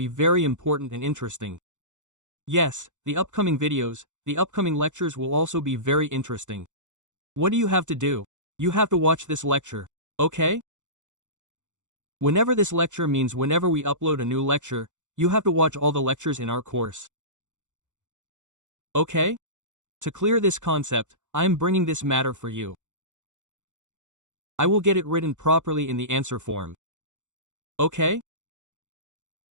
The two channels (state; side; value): late; left; 0.85 ms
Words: very important and interesting. Yes, the upcoming videos, the upcoming lectures will also be very interesting. What do you have to do? You have to watch this lecture, okay? Whenever this lecture means whenever we upload a new lecture, you have to watch all the lectures in our course. Okay? To clear this concept, I am bringing this matter for you. I will get it written properly in the answer form. Okay?